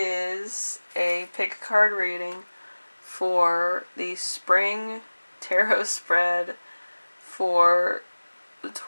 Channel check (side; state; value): both; inverted; correlation -1.00